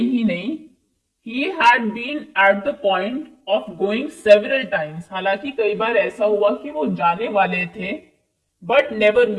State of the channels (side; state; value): both; identical; correlation 1.00